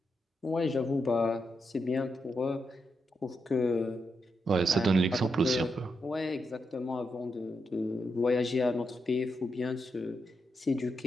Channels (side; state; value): both; normal; correlation 0.83